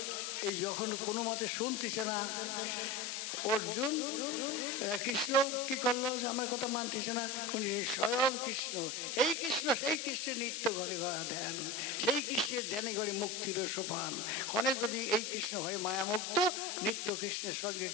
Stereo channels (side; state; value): left; noise; hiss, 4 dB below the sound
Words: এই যখন কোনো মতে শুনতেছে না অর্জুন, কৃষ্ণ কি করলো যে আমার কথা মানতেছে না, উনি স্বয়ং কৃষ্ণ, এই কৃষ্ণ সেই কৃষ্ণের নিত্য ঘরে ধ্যান, সেই কৃষ্ণের ধ্যানে ঘরে মুক্তির সোপান ক্ষণে যদি এই কৃষ্ণ হয় মায়ামুক্ত, নিত্য কৃষ্ণের সঙ্গে